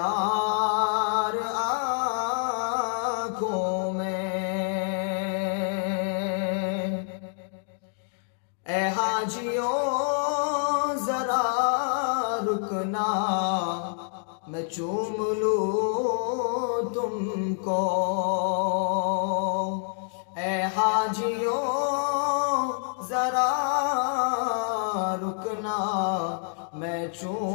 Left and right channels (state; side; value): silent; right; 60 dB below the other